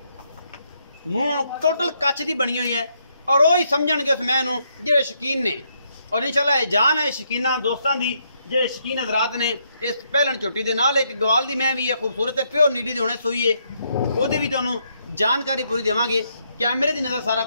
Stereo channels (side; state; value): both; inverted; correlation -0.75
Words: मूँह टोटल कच की बनी हुई है और वही समझणगे उस मैं जेडे शकीन ने और इंशाल्लाह जान है शकीना दोस्तों की जेडे शकीन हजरात ने इस पहलन झोटी के नाल एक गवाल की मैं भी है खूबसूरत है प्योर नीली दी हुणे सूई है वो भी तुहानूं जानकारी पूरी देवांगे। कैमरे की नज़र सारा